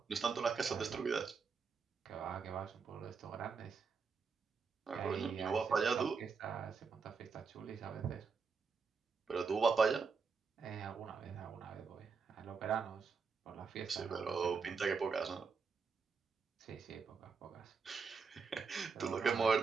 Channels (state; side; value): quieter; left; 5.3 dB